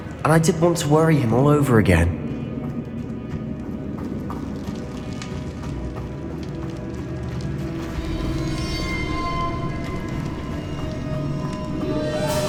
And I didn't want to worry him all over again.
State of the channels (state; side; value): identical; both; correlation 1.00